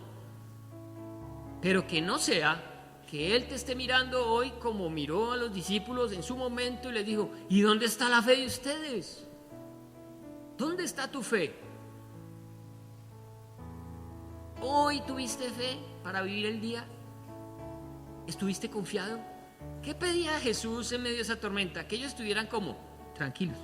Pero que no sea que Él te esté mirando hoy como miró a los discípulos en su momento y les dijo, ¿y dónde está la fe de ustedes? ¿Dónde está tu fe? ¿Hoy tuviste fe para vivir el día? ¿Estuviste confiado? ¿Qué pedía Jesús en medio de esa tormenta? Que ellos estuvieran como tranquilos,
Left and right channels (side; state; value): both; identical; correlation 1.00